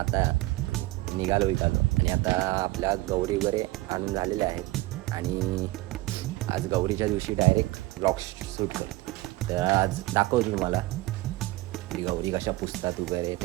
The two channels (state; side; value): quieter; left; 19.2 dB